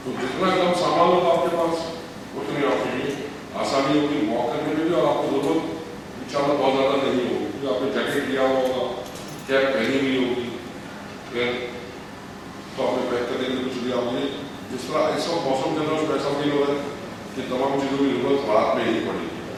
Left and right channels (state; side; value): identical; both; correlation 1.00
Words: तो जितना कम सामान होगा आपके पास उतनी आपके लिए आसानी होगी वॉक करने में भी और आपको जरूरत इंशाल्लाह बहुत ज़्यादा नहीं होगी क्योंकि आपने जैकेट लिया हुआ होगा, कैप पहनी हुई होगी, फिर तो आपने पैक करने के लिए कुछ लिया होगी। जिस तरह इस वक्त मौसम के अंदर ऐसा फील हो रहा है कि तमाम चीज़ों की जरूरत रात में ही पड़ेगी।